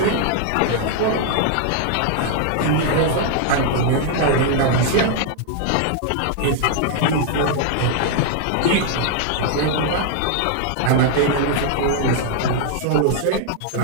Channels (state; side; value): different; both; correlation 0.00